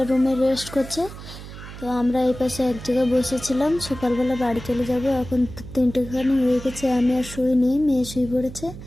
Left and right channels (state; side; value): noise; right; hum, 13 dB below the sound